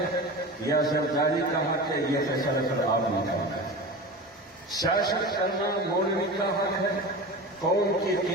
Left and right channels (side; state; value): both; normal; correlation 0.31